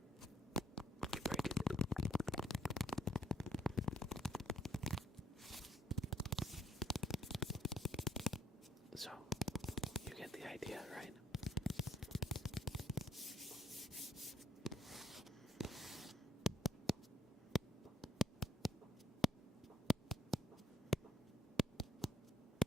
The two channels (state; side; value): normal; both; correlation 0.67